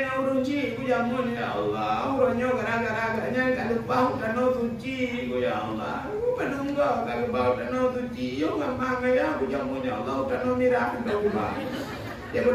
urung ci ku jamun ya Allah. Urangnya gara-garanya kalau bau dan suci ku ya Allah. Ku penunggu kalau bau dan suci yo ngamang ya ku jamun ya Allah dan mirah dan ubah. Ya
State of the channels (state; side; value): identical; both; correlation 1.00